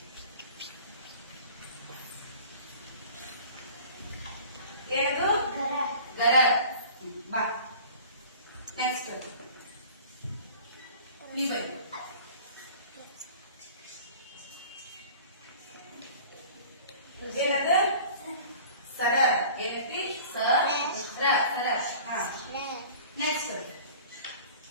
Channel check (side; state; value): both; inverted; correlation -0.44